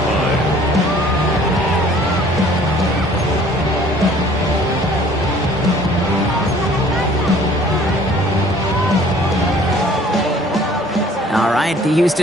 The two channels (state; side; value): normal; both; correlation 0.54